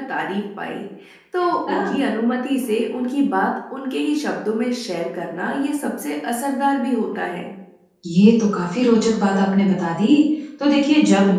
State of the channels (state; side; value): identical; both; correlation 1.00